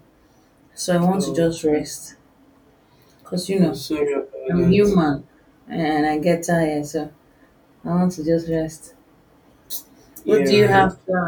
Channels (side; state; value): both; identical; correlation 1.00